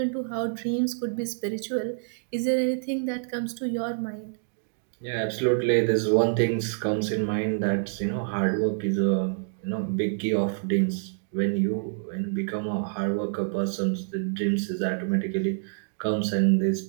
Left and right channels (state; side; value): silent; left; digital silence